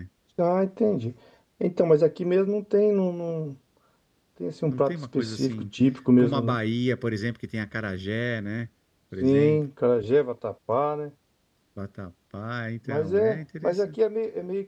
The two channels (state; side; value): identical; both; correlation 1.00